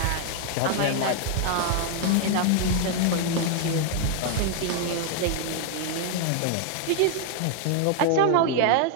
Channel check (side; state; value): both; different; correlation 0.00